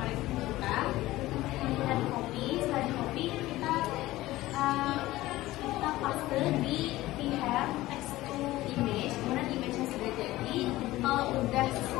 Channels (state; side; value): quieter; right; 17.2 dB